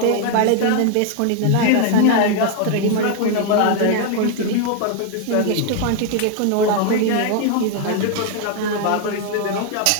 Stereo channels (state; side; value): different; both; correlation 0.00